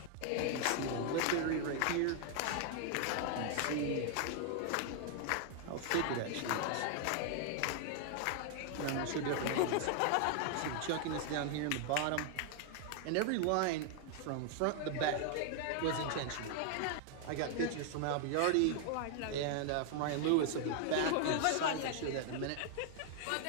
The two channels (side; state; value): both; different; correlation 0.00